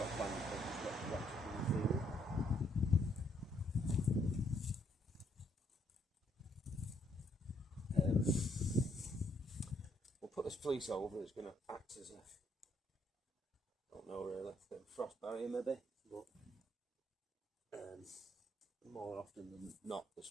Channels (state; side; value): normal; both; correlation 0.70